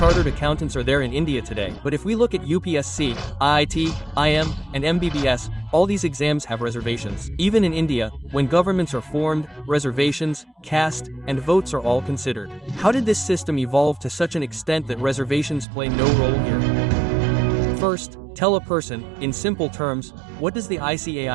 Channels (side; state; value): left; drops out; at 15.7 s